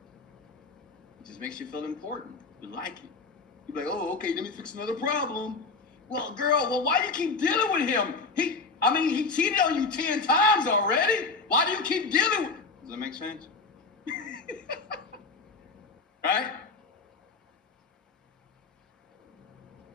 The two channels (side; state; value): right; quieter; 4.1 dB